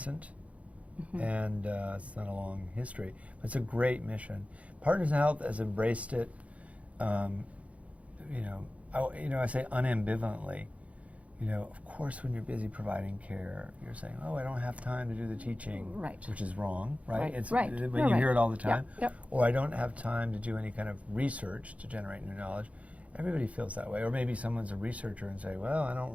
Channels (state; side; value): late; left; 0.066 ms